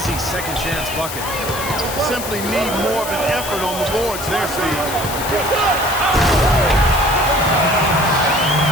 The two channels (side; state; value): left; noise; hiss, 8 dB below the sound